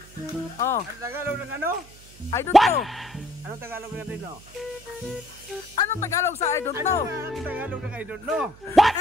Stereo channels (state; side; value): noise; right; hum, 22 dB below the sound